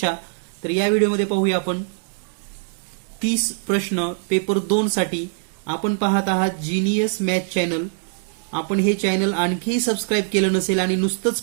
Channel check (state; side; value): silent; left; digital silence